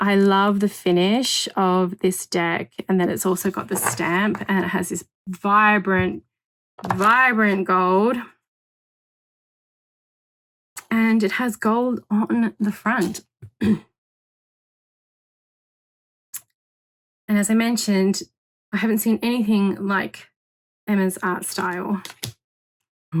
love the finish of this deck. And then it's also got the stamp and it has this vibrant, vibrant gold. And it has gold on the front. And as I mentioned, I haven't seen anything like Emma's art style. Oh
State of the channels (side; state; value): both; identical; correlation 1.00